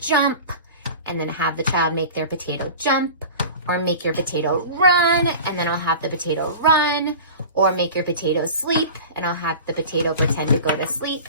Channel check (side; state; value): both; inverted; correlation -0.36